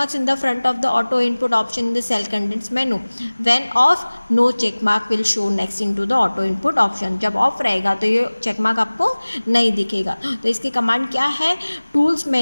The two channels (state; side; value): inverted; both; correlation -1.00